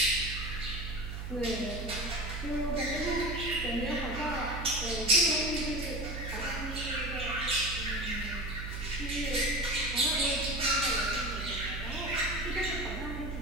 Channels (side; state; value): right; noise; hum, 6 dB below the sound